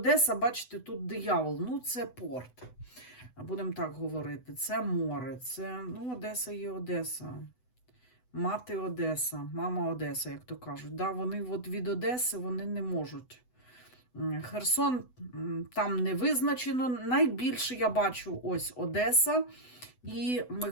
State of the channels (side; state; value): right; late; 8.0 ms